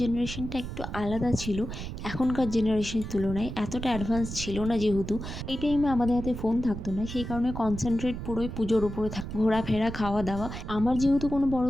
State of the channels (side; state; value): right; noise; rumble, 8 dB below the sound